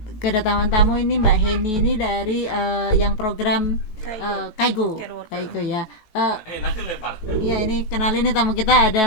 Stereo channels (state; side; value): late; right; 18 ms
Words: kedatangan tamu ini Mbak Heni ini dari yang program Kaigo ya. Iya, ini kenalin nih tamu kita, ada